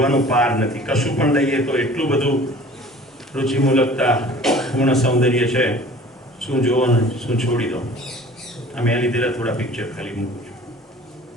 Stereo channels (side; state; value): both; normal; correlation 0.46